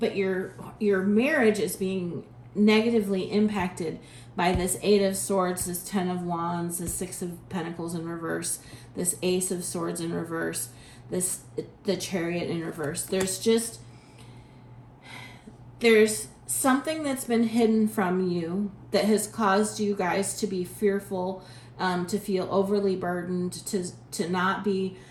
your marriage is being negatively impacted by this 8 of Swords, this 10 of Wands, this 6 of Pentacles in reverse, this Ace of Swords in reverse, the Chariot in reverse. There's something that's been hidden from you that has caused you guys to be fearful, to feel overly burdened, to not be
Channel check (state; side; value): identical; both; correlation 1.00